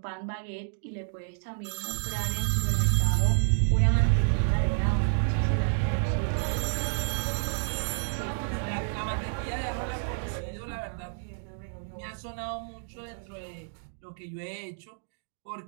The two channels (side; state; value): left; silent; digital silence